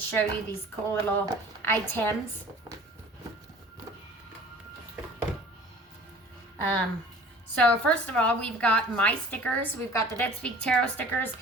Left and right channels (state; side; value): normal; both; correlation 0.46